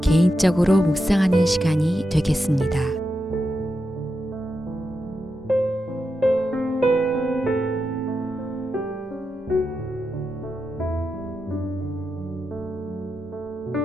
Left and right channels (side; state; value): both; normal; correlation 0.87